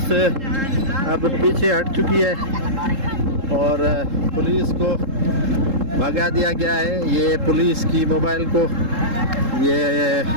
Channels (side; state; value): left; late; 3.7 ms